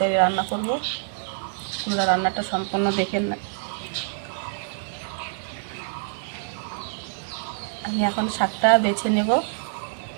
রান্না করব। তোমরা রান্নাটা সম্পূর্ণ দেখে না। আমি এখন শাকটা বেছে নেব।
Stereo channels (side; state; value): left; silent; digital silence